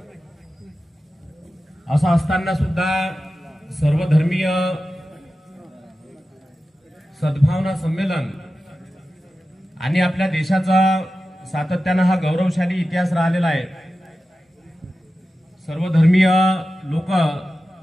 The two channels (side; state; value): both; normal; correlation 0.93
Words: असं असताना सुद्धा सर्वधर्मीय सद्भावना संमेलन आणि आपल्या देशाचा सातत्यानं हा गौरवशाली इतिहास राहिलेला आहे. सर्वधर्मीय लोक